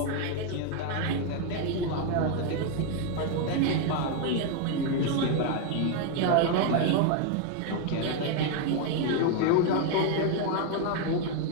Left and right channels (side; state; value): both; different; correlation 0.01